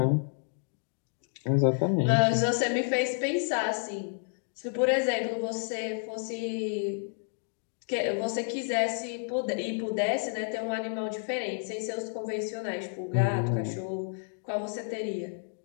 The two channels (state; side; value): silent; right; digital silence